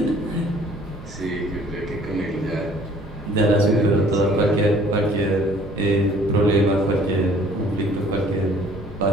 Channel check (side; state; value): both; normal; correlation 0.56